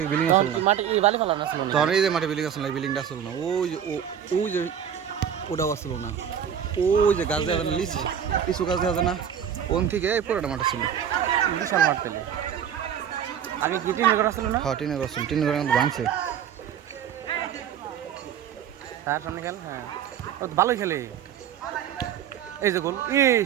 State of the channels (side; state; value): left; quieter; 8.8 dB